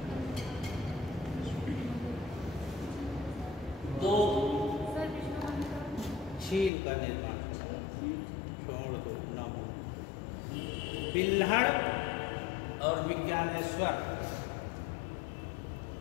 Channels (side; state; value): right; drops out; at 6.7 s